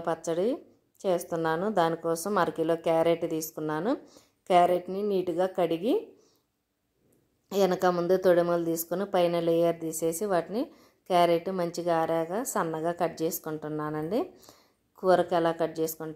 పచ్చడి చేస్తున్నాను. దానికోసం అరకిలో క్యారెట్ తీసుకున్నాను. క్యారెట్ని నీట్గా కడిగి వెనక ముందు తొడిమలు తీసుకుని పైన లేయర్ తీసేసి వాటిని క్యారెట్ మంచిగా ఆరాగా సన్నగా కట్ చేసుకుంటున్నానండి. కూరకి ఎలా కట్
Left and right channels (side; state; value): both; identical; correlation 1.00